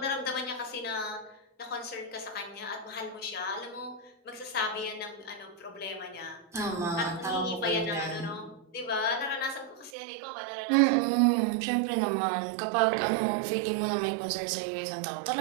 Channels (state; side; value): drops out; left; at 9.9 s